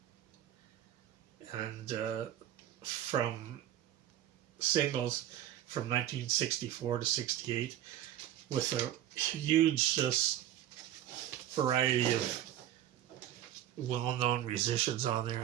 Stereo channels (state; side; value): quieter; left; 12.1 dB